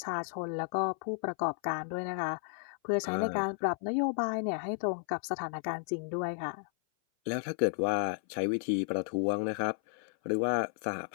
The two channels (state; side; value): silent; right; 56 dB below the other